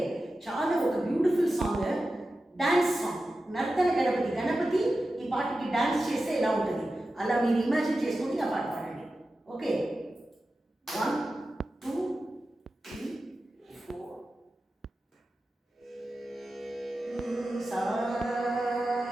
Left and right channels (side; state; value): both; normal; correlation 0.93